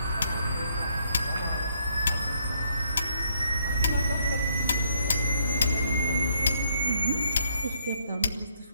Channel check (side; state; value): both; inverted; correlation -0.71